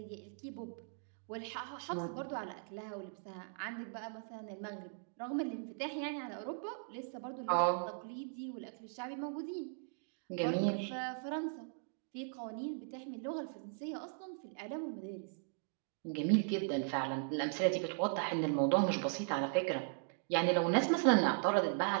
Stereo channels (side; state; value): left; silent; digital silence